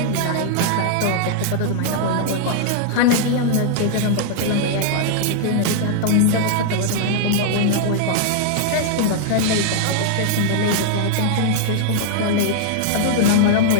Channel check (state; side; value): different; both; correlation -0.01